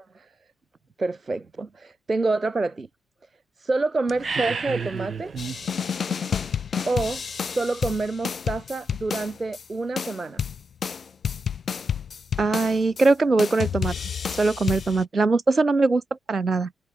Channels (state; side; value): normal; both; correlation 0.87